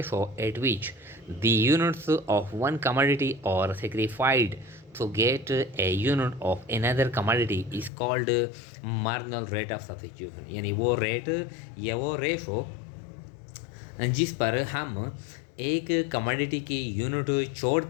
at which the units of one commodity are sacrificed to get a unit of another commodity is called marginal rate of substitution। यानी वो रेट या वो रेशो जिस पर हम एक कमोडिटी की यूनिट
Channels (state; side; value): drops out; right; at 7.9 s